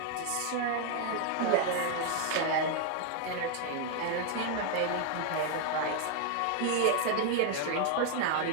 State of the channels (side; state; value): both; different; correlation 0.00